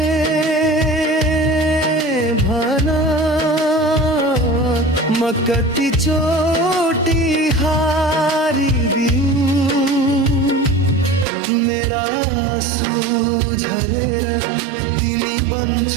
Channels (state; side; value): drops out; left; at 11.2 s